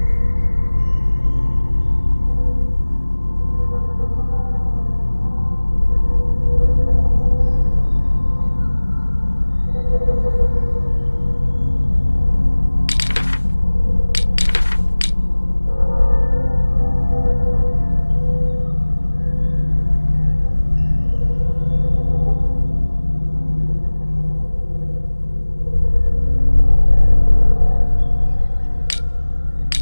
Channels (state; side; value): inverted; both; correlation -1.00